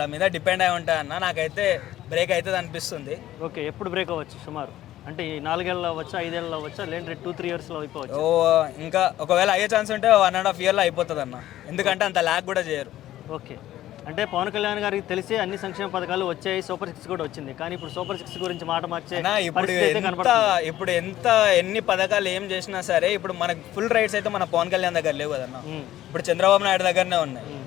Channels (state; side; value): quieter; right; 13.8 dB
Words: మీద డిపెండ్ అయి ఉంటాయన్న. నాకైతే బ్రేక్ అవుతుంది అనిపిస్తుంది. ఓకే, ఎప్పుడు బ్రేక్ అవ్వచ్చు సుమారు? అంటే ఈ 4 ఏళ్ళు అవ్వచ్చా, 5 ఏళ్ళు అవ్వచ్చా, లేదంటే 2-3 yearsలో అయిపోవచ్చు? ఇంకా ఒకవేళ అయ్యే ఛాన్స్ ఉంటే 1.5 yearలో అయిపోతుంది అన్న. ఎందుకంటే అంత ల్యాక్ కూడా చేయరు. ఓకే, అంటే పవన్ కళ్యాణ్ గారికి తెలిసి అన్ని సంక్షేమ పథకాలు వచ్చాయి, సూపర్ 6 కూడా వచ్చింది, కానీ ఇప్పుడు సూపర్ 6 గురించి మాట మార్చే ఇప్పుడు ఎన్ని పథకాలు ఏం చేసినా సరే ఇప్పుడు మనకు ఫుల్ రైట్స్ అయితే మన పవన్ కళ్యాణ్ దగ్గర లేవు కదన్న. ఇప్పుడు చంద్రబాబు నాయుడు దగ్గరనే ఉన్నాయి.